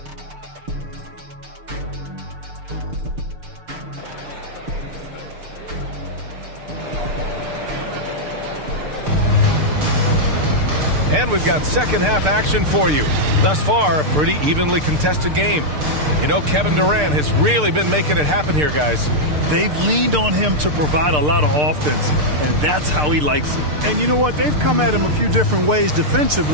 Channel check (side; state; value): left; late; 6.7 ms